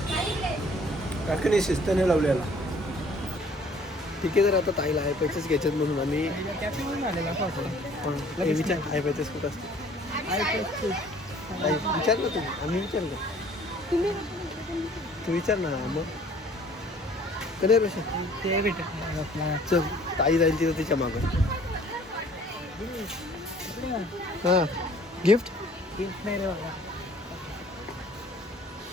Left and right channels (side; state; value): both; normal; correlation 0.55